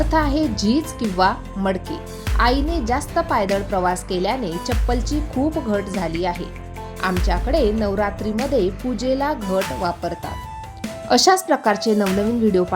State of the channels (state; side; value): identical; both; correlation 1.00